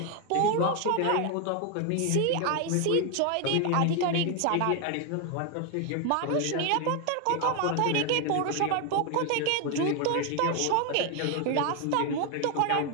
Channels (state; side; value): different; both; correlation 0.01